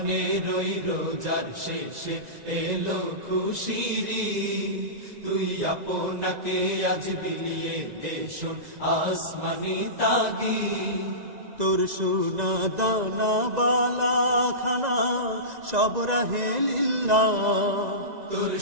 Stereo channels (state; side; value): late; left; 2.0 ms